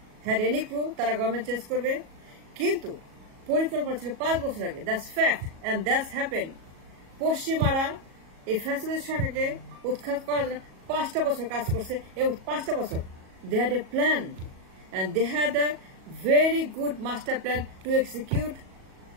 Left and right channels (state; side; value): late; left; 37 ms